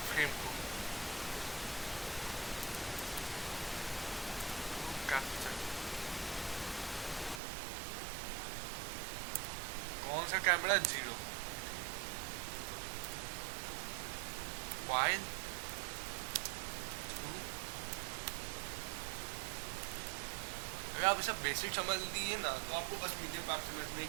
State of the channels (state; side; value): drops out; left; at 7.4 s